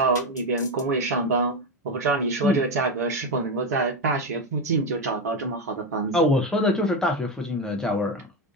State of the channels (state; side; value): normal; both; correlation 0.12